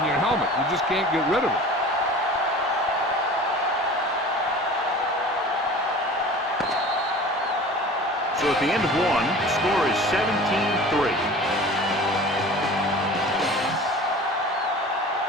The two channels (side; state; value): both; normal; correlation 0.40